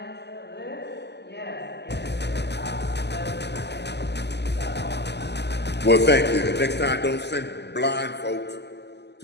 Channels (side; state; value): right; late; 0.50 ms